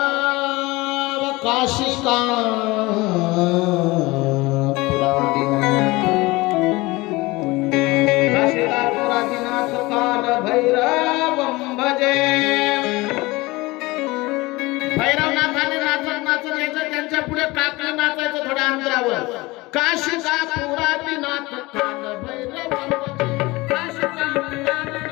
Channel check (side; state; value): right; quieter; 21.9 dB